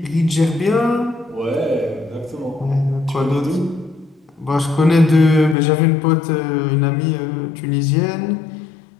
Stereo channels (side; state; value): right; drops out; at 5.6 s